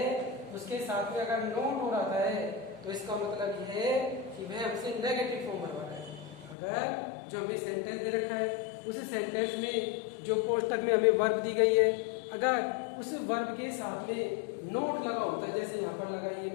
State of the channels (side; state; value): right; drops out; at 6.6 s